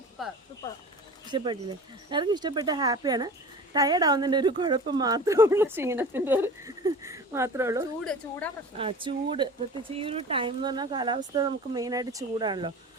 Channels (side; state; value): both; normal; correlation 0.37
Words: ഇഷ്ടപ്പെട്ടില്ലേ? എല്ലാവർക്കും ഇഷ്ടപ്പെട്ട, ഹാപ്പിയാണ്. ടയേർഡ് ആവുന്നതിൻ്റെ ഒരു കുഴപ്പം മാത്രമേ ഉള്ളൂ, ക്ഷീണത്തിൻ്റെ ഒരു മാത്രമേ ഉള്ളൂ. ചൂട് പ്രത്യേകിച്ച് ഈ ഒരു ടൈം എന്ന് പറഞ്ഞാൽ കാലാവസ്ഥ നമുക്ക് മെയിനായിട്ട് ചൂടാണല്ലോ.